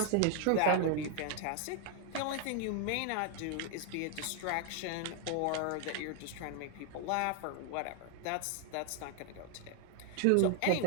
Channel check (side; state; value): both; different; correlation 0.00